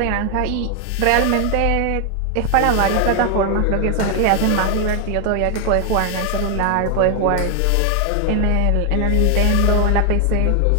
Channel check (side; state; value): both; different; correlation 0.00